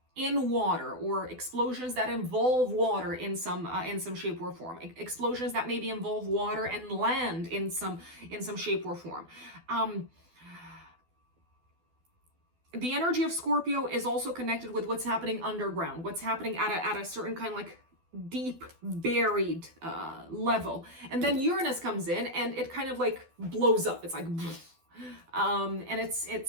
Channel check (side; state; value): left; late; 12 ms